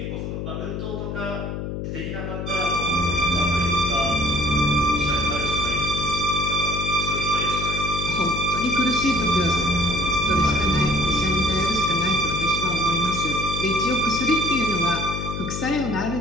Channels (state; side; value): noise; left; hum, 5 dB below the sound